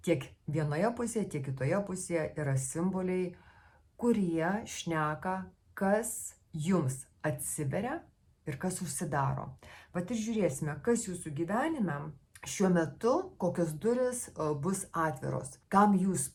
Tiek vienoje pusėje, tiek kitoje pusėje yra simboliai, kurie šneka, kas jums atsiveria ir kas užsidaro. Vat ir žiūrėsime, kas jūsų gyvenime šiuo metu, kokios duris bus atviros, kam jūs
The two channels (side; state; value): both; identical; correlation 1.00